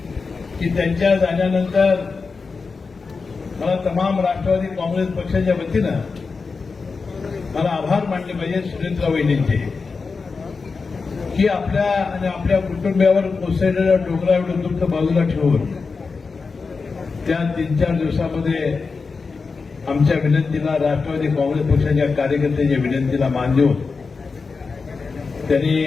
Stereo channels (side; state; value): right; quieter; 4.6 dB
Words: की त्यांच्या जाण्यानंतर मला तमाम राष्ट्रवादी काँग्रेस पक्षाच्या वतीनं मला आभार मानले पाहिजे सुनेत्रा वहिनींचे की आपल्या आणि आपल्या कुटुंबियावर कोसळलेल्या डोंगरा एवढं दुःख बाजूला ठेवून त्या 3-4 दिवसामध्ये आमच्या विनंतीला, राष्ट्रवादी काँग्रेस पक्षाच्या कार्यकर्त्यांच्या विनंतीला मान देऊन त्यांनी